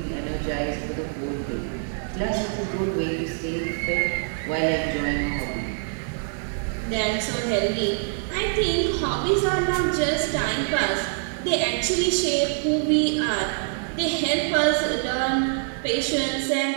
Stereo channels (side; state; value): left; silent; digital silence